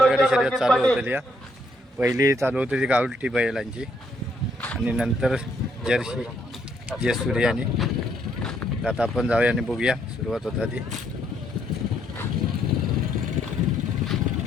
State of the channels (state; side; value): normal; both; correlation 0.71